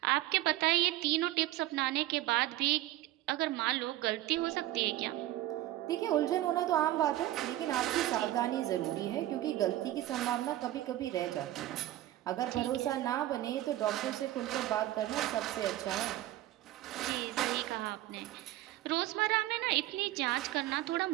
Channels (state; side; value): quieter; left; 15.1 dB